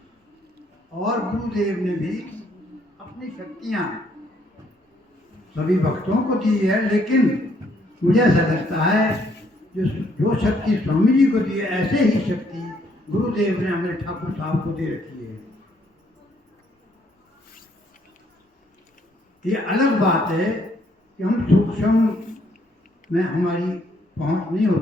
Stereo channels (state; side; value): normal; both; correlation 0.69